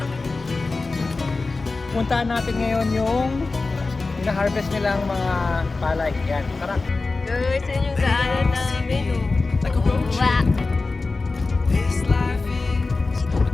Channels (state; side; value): quieter; right; 3.7 dB